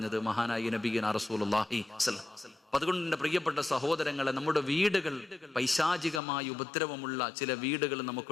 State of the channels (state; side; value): drops out; right; at 6.2 s